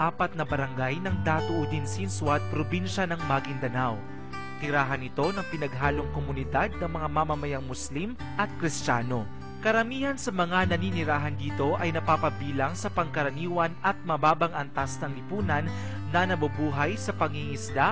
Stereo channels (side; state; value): both; identical; correlation 1.00